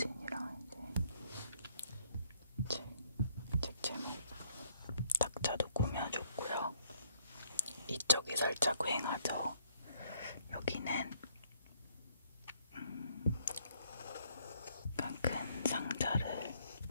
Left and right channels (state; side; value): inverted; both; correlation -0.68